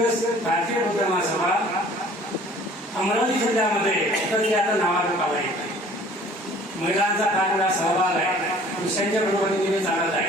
भारतीय बौद्ध महासभा अमरावती जिल्ह्यामध्ये तर ते आता नावारूप आला आहे. महिलांचा फार मोठा सहभाग आहे, पुरुषांच्या बरोबरीने चालत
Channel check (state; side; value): normal; both; correlation 0.51